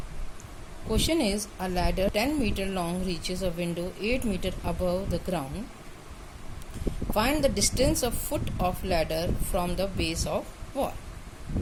Question is, a ladder 10 meter long reaches a window 8 meter above the ground. Find the distance of foot of ladder from the base of wall.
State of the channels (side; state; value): both; identical; correlation 1.00